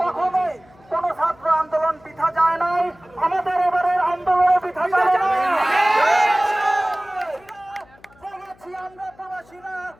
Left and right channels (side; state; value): left; noise; hum, 28 dB below the sound